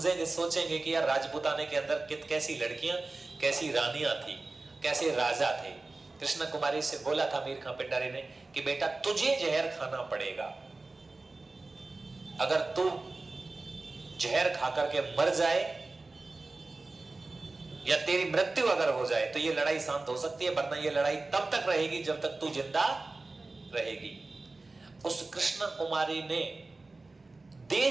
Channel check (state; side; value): quieter; left; 3.4 dB